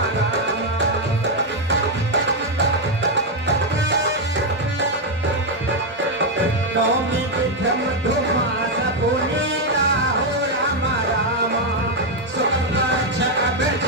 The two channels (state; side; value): normal; both; correlation 0.03